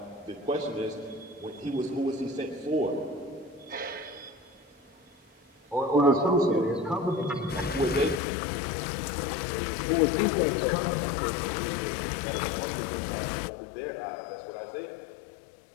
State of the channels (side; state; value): right; drops out; at 8.2 s